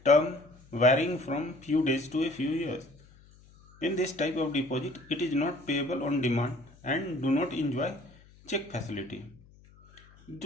term varying from few days to a few years. In this type of deposit, it is not payable on demand and do not enjoy check facility.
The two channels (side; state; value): left; noise; hum, 26 dB below the sound